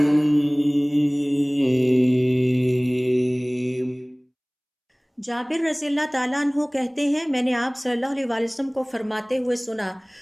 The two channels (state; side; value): identical; both; correlation 1.00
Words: جابر رضی اللہ تعالیٰ عنہ کہتے ہیں، میں نے آپ صلی اللہ علیہ وسلم کو فرماتے ہوئے سنا،